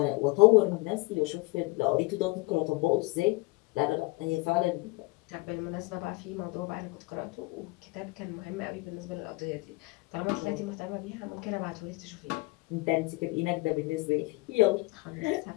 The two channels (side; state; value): right; quieter; 23.8 dB